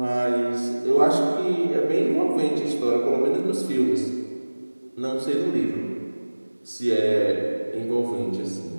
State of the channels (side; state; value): both; inverted; correlation -1.00